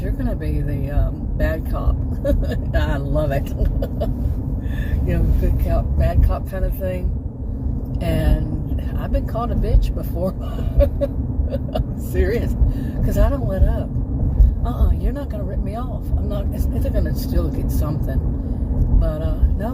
you're going to be the bad cop. I love it. You know, good cop, bad cop kind of thing. And I've been called a bitch before. I'm serious. Because I don't let up. You're not going to rip me off. I'm not. They're going to still get something. But,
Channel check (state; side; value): identical; both; correlation 1.00